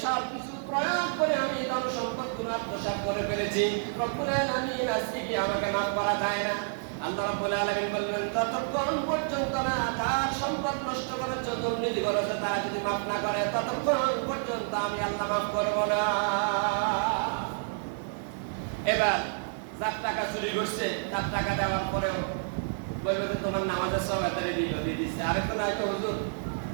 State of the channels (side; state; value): left; silent; digital silence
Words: সব কিছু প্রয়োগ করে আমি ধন সম্পদগুলো আত্মসাৎ করে ফেলেছি। রব্বুল আলামিন আজকে কি আমাকে মাফ করা যায় না? আল্লাহ রাব্বুল আলামিন বললেন ততক্ষণ পর্যন্ত না তার সম্পদ নষ্ট করার জন্য দুর্নীতি করেছে তারা যদি মাফ না করে ততক্ষণ পর্যন্ত আমি আল্লাহ মাফ করব না। এবার যার টাকা চুরি করছে তার টাকা দেওয়ার পরেও বলবে যে তোমার নামাজের সব এতারে দিয়ে দিচ্ছে, আরেকটা নাই তো হুজুর